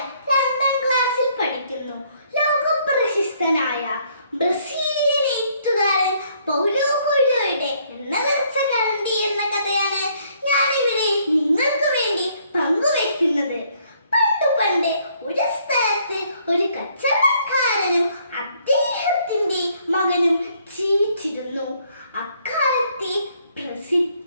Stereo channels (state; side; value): inverted; both; correlation -0.66